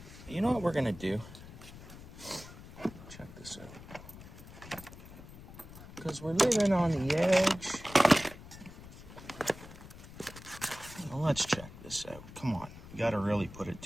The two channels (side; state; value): left; noise; rumble, 16 dB below the sound